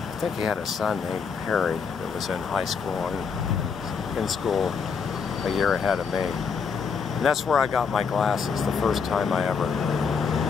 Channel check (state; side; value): quieter; right; 5.8 dB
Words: I think he had a son named Harry that was in high school and in school a year ahead of me. And that's where I got my glasses, the first time I ever